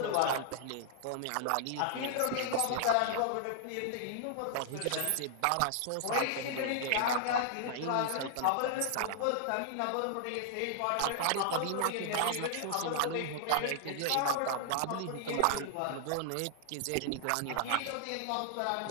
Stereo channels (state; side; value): different; both; correlation 0.00